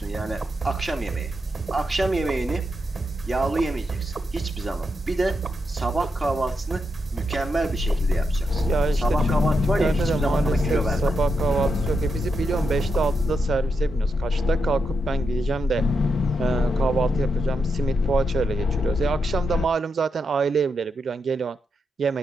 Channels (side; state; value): both; normal; correlation 0.84